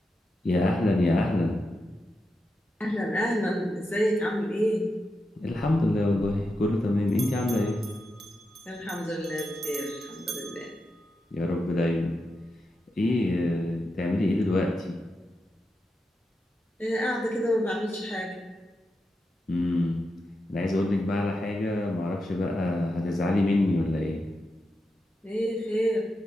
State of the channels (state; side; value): normal; both; correlation 0.87